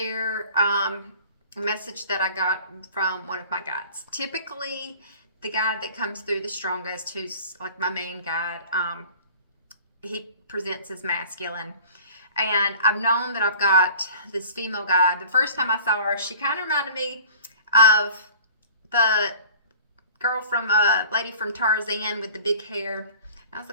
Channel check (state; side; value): inverted; both; correlation -0.46